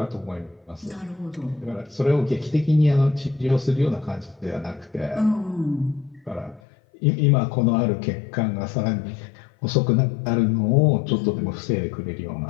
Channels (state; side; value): drops out; right; at 6.6 s